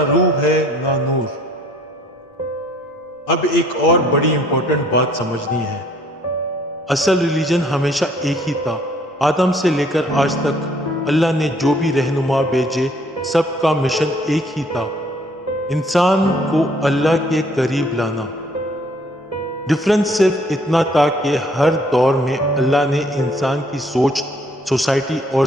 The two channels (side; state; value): both; normal; correlation 0.61